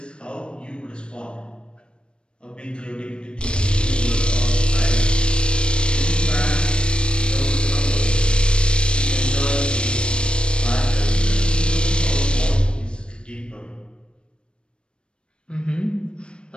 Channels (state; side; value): late; right; 0.055 ms